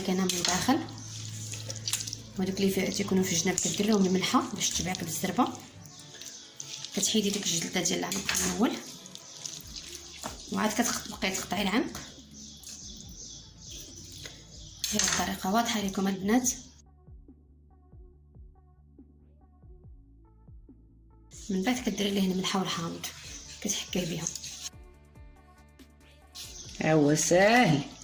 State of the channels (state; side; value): identical; both; correlation 1.00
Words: كاينه من الداخل، وهذوك اللي تيكونوا في الجناب كدير لهم الملحه باش تبعك بالزربه، كتحيدي ديك الجلده ديال العنق الاول، وعاد كتبقاي تقطعي العنق. هي الطريقه واضحه لكم البنات. من بعد كديري ليه الملحه والحامض كتحكيه بها. هو ساهل